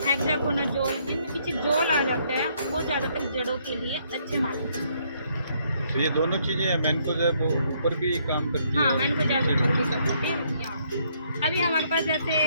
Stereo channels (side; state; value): both; inverted; correlation -0.69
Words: हेक्साकोनाजोल जिनमें पीछे जोल आ जाता है वो ज़्यादातर जड़ों के लिए अच्छे मानते हैं। तो ये दोनों चीजें मैनकोजेब ऊपर भी काम करती है। हाँ, मैनकोजेब ऊपर भी कर सकते हैं यहाँ। अभी हमारे पास जैसे